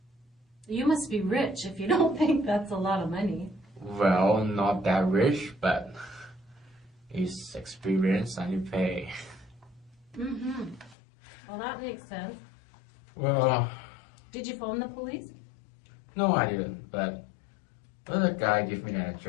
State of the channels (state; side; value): drops out; right; at 11.0 s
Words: You must be rich if you don't think that's a lot of money. Well, not that rich, but it's experience and you pay. Mm-hmm. Well, that makes sense. Well, Did you phone the police? no, I didn't. But the guy gave me the